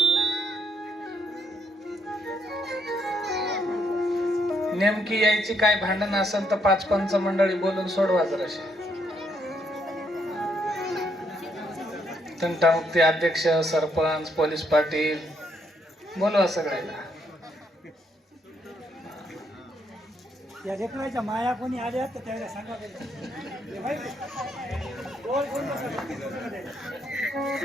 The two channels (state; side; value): normal; both; correlation 0.74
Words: नेमकी यायची काय भांडण असेल तर 5 पंच मंडळी बोलून सोडवा जराशी. तंटामुक्ती अध्यक्ष, सरपंच, पोलीस पाटील बोलवा सगळ्याला. या लेकराच्या माया कोणी आल्या तर त्याला सांगा.